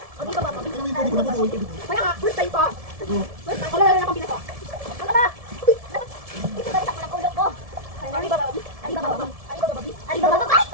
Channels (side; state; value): left; late; 1.7 ms